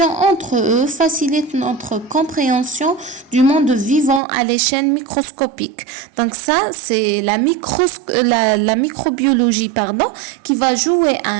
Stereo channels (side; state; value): left; drops out; at 4.2 s